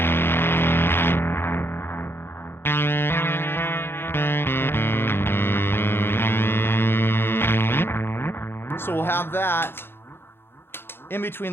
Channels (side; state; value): right; late; 0.11 ms